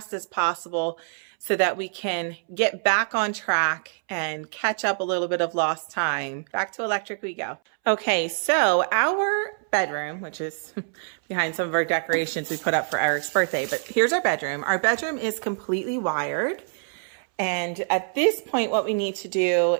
as possible so that we can get back on track and catch up a little bit of lost time. Back to electric we go. Okay, so our bedroom, which is behind some of our decorations we put up for Eric's birthday, but here's our bedroom. Our bedroom is completely wired. And at this point, what we need to do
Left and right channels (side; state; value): left; silent; 62 dB below the other